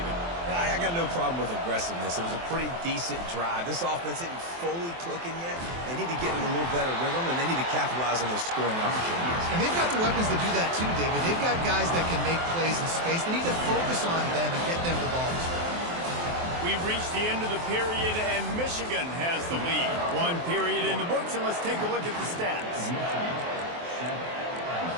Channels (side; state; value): left; late; 23 ms